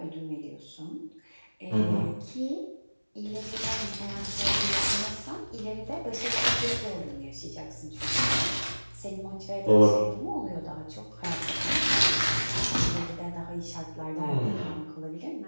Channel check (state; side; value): inverted; both; correlation -1.00